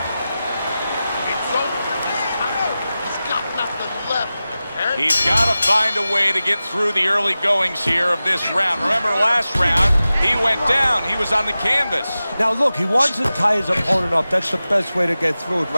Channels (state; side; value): inverted; both; correlation -0.95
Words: He's got to find a way to get through the early goings here of this round. Remember last round, he went down. He was on the canvas. Now, look, he wants to tie his opponent up. That's the best way to get through it